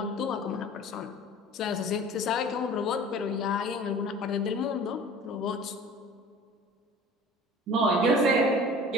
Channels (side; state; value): both; normal; correlation 0.43